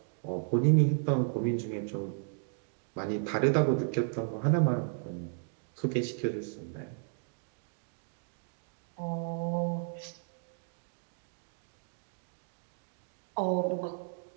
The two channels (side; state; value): left; silent; digital silence